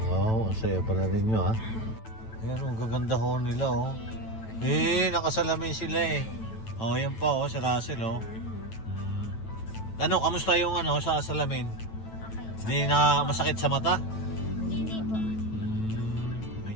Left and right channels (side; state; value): right; late; 9.1 ms